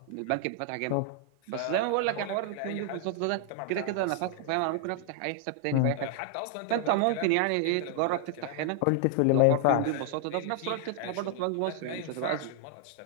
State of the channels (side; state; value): both; different; correlation 0.00